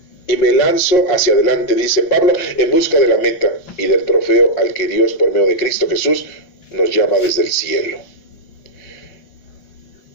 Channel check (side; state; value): right; late; 5.6 ms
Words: Y me lanzo hacia adelante, dice Pablo, en busca de la meta y del trofeo al que Dios, por medio de Cristo Jesús, nos llama desde el cielo.